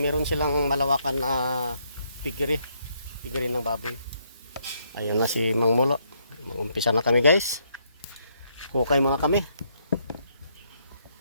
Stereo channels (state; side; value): inverted; both; correlation -0.74